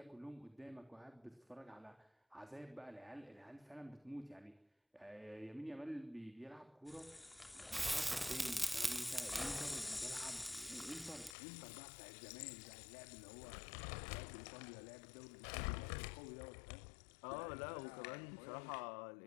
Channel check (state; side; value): drops out; right; at 11.4 s